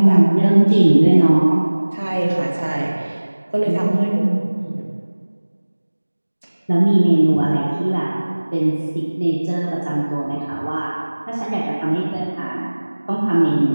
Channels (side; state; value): both; inverted; correlation -1.00